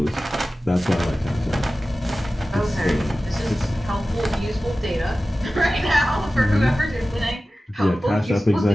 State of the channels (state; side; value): normal; both; correlation 0.96